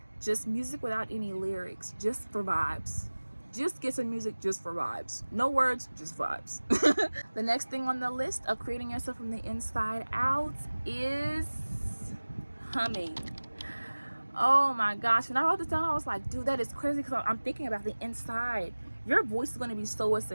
just music without any lyrics, just for vibes. Just get some music just for vibes. No words, just vibes. The next thing on the list of creating yourself from the inside out is humming. Oh my gosh, when I wrote this down, I was like, dude, that is crazy, because I'm thinking about the inside. Your voice is going to be so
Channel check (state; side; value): inverted; both; correlation -1.00